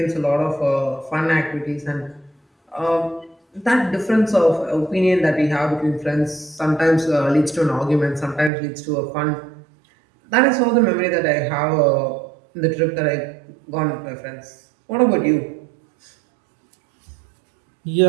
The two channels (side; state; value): left; drops out; at 8.5 s